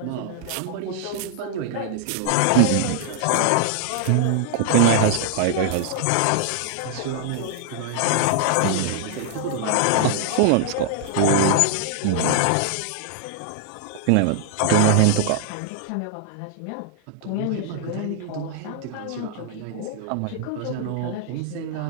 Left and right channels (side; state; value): both; different; correlation -0.01